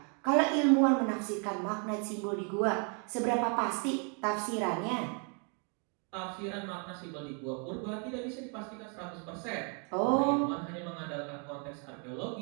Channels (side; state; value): left; quieter; 38.6 dB